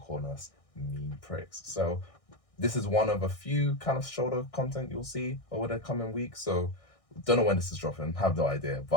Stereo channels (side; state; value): right; late; 1.6 ms